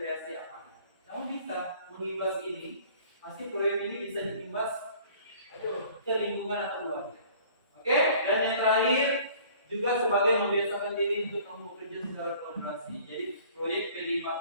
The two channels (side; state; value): both; inverted; correlation -0.51